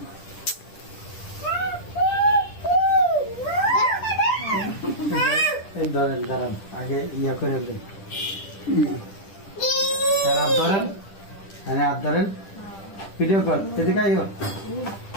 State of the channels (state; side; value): late; right; 10 ms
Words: ধরেন দাঁড়ান আগে ইয়া করে হাত ধরেন হাত ধরেন ভিডিও কর এদিকে আইও